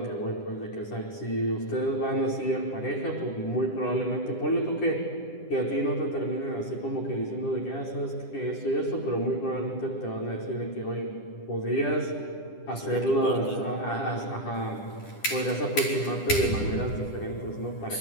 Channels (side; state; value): right; late; 10 ms